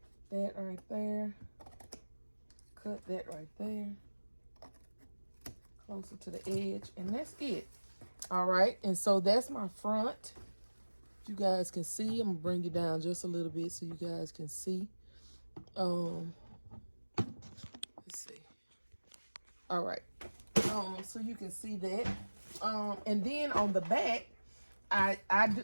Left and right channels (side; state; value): both; inverted; correlation -1.00